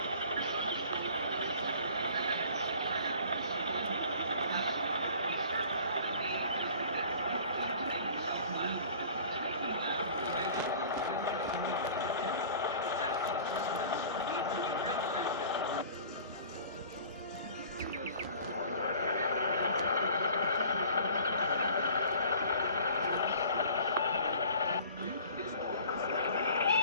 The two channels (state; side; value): inverted; both; correlation -0.47